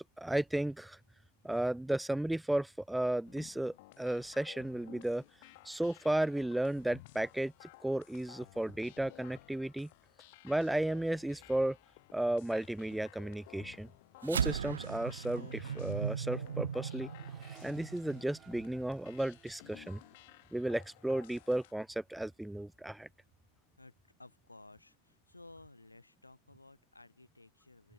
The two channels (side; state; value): both; normal; correlation 0.85